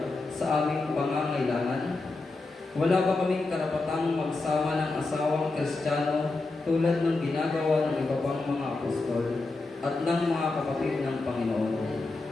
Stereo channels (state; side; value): quieter; right; 3.4 dB